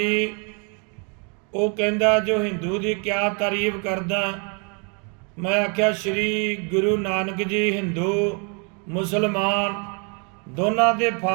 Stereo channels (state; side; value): quieter; left; 36.1 dB